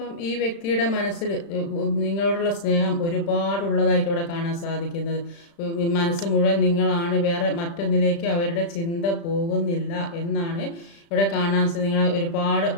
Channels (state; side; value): late; right; 35 ms